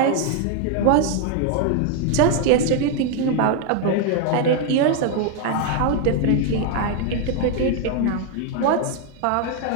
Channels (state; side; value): different; both; correlation 0.01